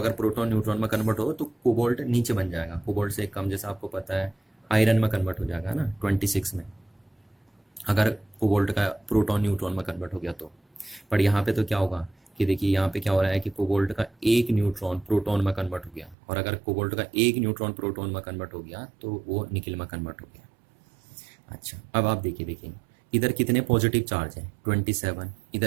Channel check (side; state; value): left; drops out; at 16.2 s